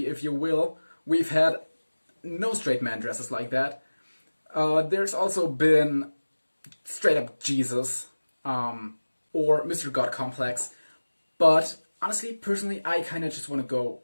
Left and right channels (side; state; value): both; inverted; correlation -1.00